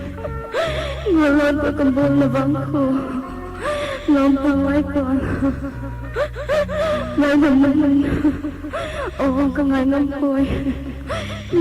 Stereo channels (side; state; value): both; identical; correlation 1.00